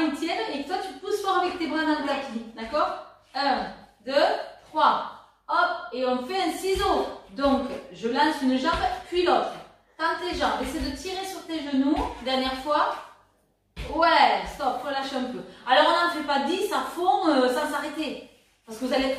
tiennent et que toi tu pousses fort avec tes bras dans le tapis. D'accord? 1, 2, 3. Hop. Et on fait un ciseau. Donc, je lance une jambe, puis l'autre. Tends tes jambes. Essaie de tirer sur tes genoux. Dernière fois. Ouais, stop, relâche un peu. Alors, on n'en fait pas 10 à fond sans s'arrêter. Parce que vous allez être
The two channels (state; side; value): identical; both; correlation 1.00